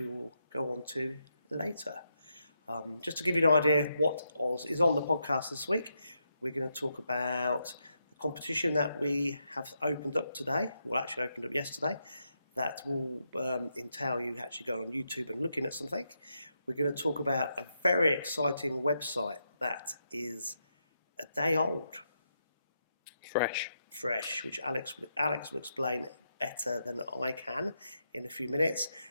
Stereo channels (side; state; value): both; inverted; correlation -0.82